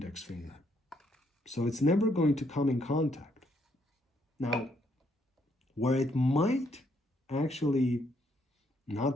finger. So it's never going to come in contact. Now, where it might actually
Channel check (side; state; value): both; normal; correlation 0.72